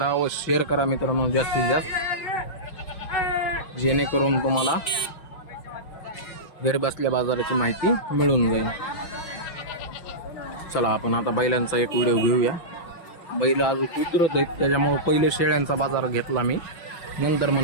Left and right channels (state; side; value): late; right; 5.8 ms